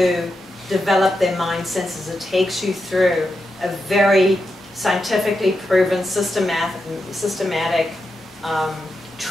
develop their mind senses. It takes you through a very scientifically proven, systematic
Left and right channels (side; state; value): both; normal; correlation 0.87